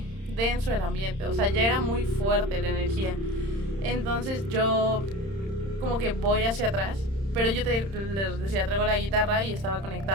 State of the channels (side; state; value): left; late; 31 ms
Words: denso el ambiente, o sea, ya era muy fuerte la energía. Entonces yo como que voy hacia atrás, pero yo les decía, traigo la guitarra y estaba